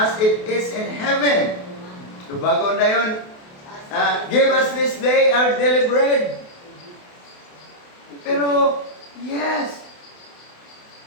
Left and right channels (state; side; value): late; right; 28 ms